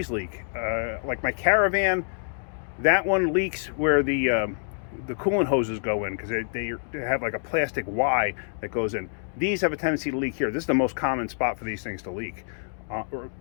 leak. Like my Caravan, that one leaks where the coolant hoses go in, because they have like a plastic Y that goes in. These have a tendency to leak here. This is the most common spot for these things to leak, or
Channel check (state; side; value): silent; right; digital silence